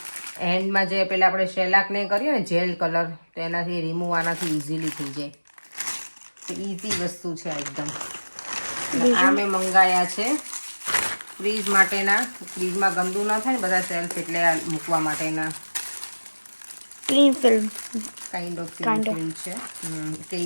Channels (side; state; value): both; inverted; correlation -1.00